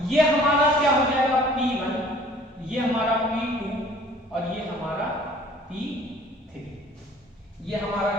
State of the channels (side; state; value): both; normal; correlation 0.52